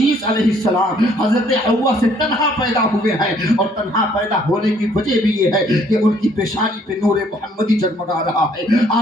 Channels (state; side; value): normal; both; correlation 0.63